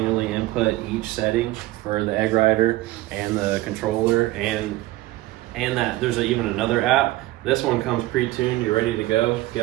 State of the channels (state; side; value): quieter; left; 17.8 dB